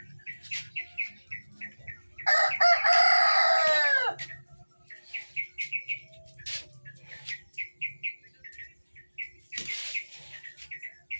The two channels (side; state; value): both; inverted; correlation -1.00